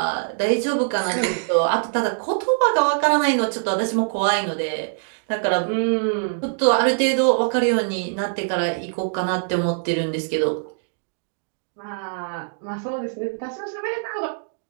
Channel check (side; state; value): left; silent; digital silence